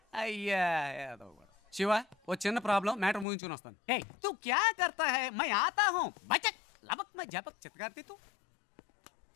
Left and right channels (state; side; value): drops out; right; at 3.2 s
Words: అయ్యా శివ ఓ చిన్న ప్రాబ్లం, మ్యాటర్ ముగించుకుని వస్తాను. హే తు క్యా కర్తా హై? మై ఆతా హూ బచక్ లబక్ మై జబక్ చిత్కార్తి తు.